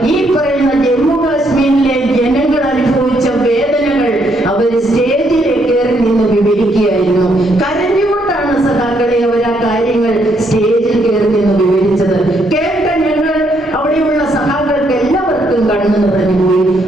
ഈ പറയുന്ന ജമ്മു കാശ്മീരിലെ ജനങ്ങൾ അനുഭവിച്ച വേദനകൾ അവർ സ്റ്റേജിൽ കയറി നിന്ന് വിവരിക്കുകയായിരുന്നു. കരഞ്ഞുകൊണ്ടാണ് സഖാക്കളെ അവർ ആ കാര്യങ്ങൾ സ്റ്റേജിൽ കയറി നിന്ന് വിവരിച്ചത്. കേട്ട ഞങ്ങൾ അവിടെയുള്ള സഖാക്കൾക്ക് എല്ലാവർക്കും കണ്ണു നിറഞ്ഞുപോയി.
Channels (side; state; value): both; normal; correlation 0.73